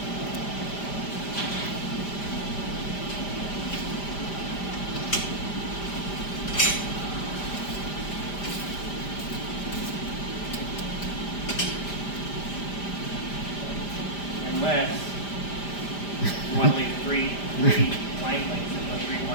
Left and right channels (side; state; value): right; late; 5.0 ms